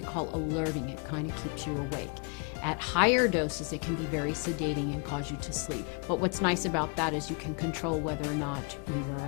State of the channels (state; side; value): quieter; right; 36.1 dB